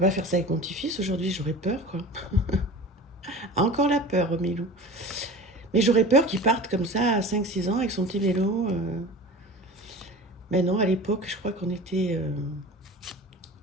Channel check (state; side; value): normal; both; correlation 0.36